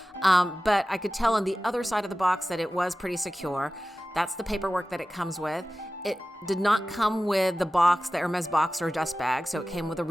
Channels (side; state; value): both; normal; correlation 0.95